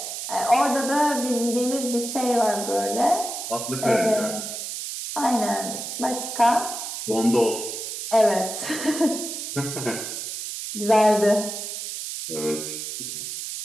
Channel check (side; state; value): right; noise; hiss, 6 dB below the sound